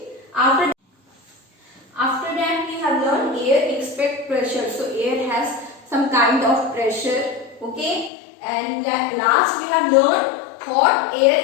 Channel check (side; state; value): right; drops out; at 8.1 s